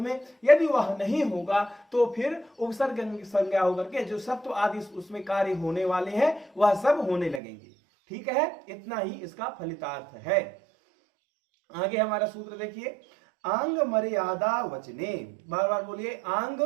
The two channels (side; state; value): left; drops out; at 7.4 s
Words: यदि वह नहीं होगा तो फिर उपसर्ग संज्ञा होकर के जो सत्व आदि उसमें कार्य होने वाले हैं वह सब होने लगेंगे। ठीक है, इतना ही इसका फलितार्थ है। आगे हमारा सूत्र देखिए, आंग मर्यादा वचने, बार बार बोलिए, आंग